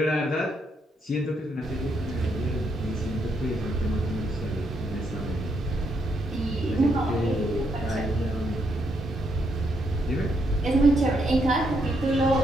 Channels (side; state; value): both; normal; correlation 0.77